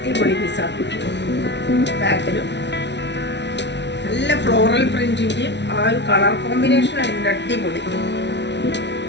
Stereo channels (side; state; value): right; late; 0.51 ms